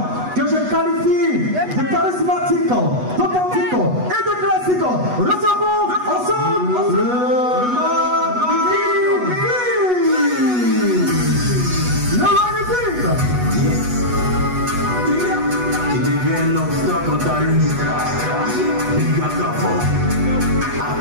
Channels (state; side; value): late; left; 8.2 ms